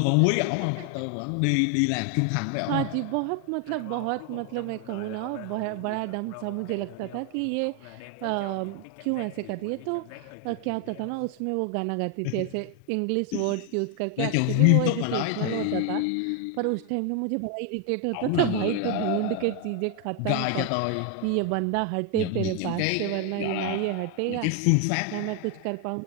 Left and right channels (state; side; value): different; both; correlation 0.01